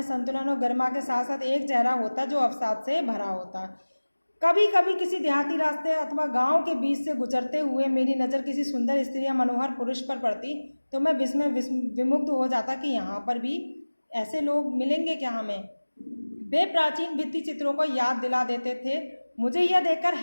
संतुलन और गरिमा के साथ साथ एक चेहरा होता जो अवसाद से भरा होता। कभी कभी किसी देहाती रास्ते अथवा गांव के बीच से गुजरते हुए मेरी नज़र किसी सुंदर स्त्री या मनोहर पुरुष पर पड़ती तो मैं विमुग्ध हो जाता कि यहाँ पर भी ऐसे लोग मिलेंगे क्या हमें। वे प्राचीन भित्ति चित्रों को याद दिला देते थे। मुझे यह देखकर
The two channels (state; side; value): inverted; both; correlation -1.00